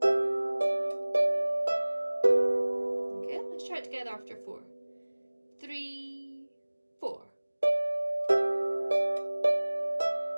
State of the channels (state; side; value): inverted; both; correlation -1.00